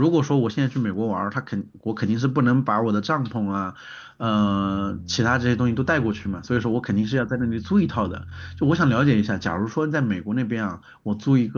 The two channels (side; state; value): both; identical; correlation 1.00